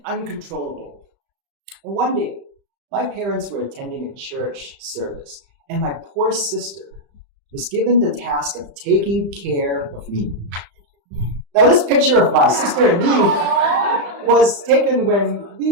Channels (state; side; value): late; left; 35 ms